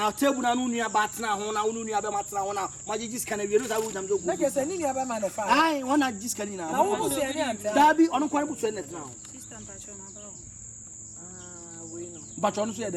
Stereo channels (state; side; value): identical; both; correlation 1.00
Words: table na nu nua batena ho na nu nua be matena ho na magigi sika na wielu sa wo jam zo ku. Na ke say ni nua be ma no fa. Ai, wona gi sika ni na. Na wo busu ya ni anta. Dabi, ono kwan busu na tena ho. Sister mpacho na ba ho. Ah, we no. Bacho no so ye